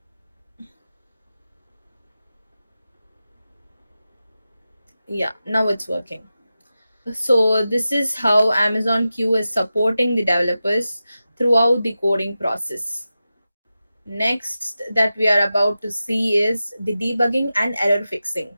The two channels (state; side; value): inverted; both; correlation -0.93